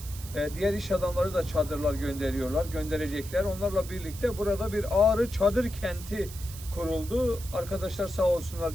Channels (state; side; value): noise; right; hiss, 14 dB below the sound